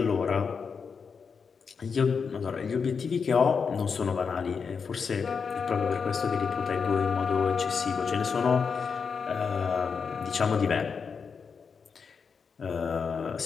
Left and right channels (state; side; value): quieter; right; 5.8 dB